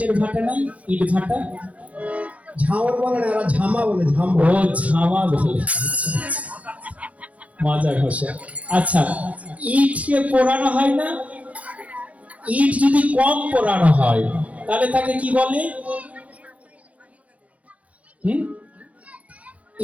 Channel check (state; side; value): late; left; 0.066 ms